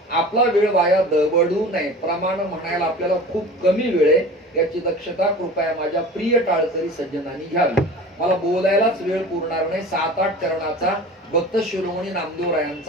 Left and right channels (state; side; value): normal; both; correlation 0.38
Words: आपला वेळ वाया दवडू नये. प्रमाण म्हणायला आपल्याला खूप कमी वेळ आहे, याची दक्षता कृपया माझ्या प्रिय टाळकरी सज्जनांनी घ्यावी. मला बोलायलाच वेळ पुरणार नाही. 7-8 चरणाचा भक्त शिरोमणी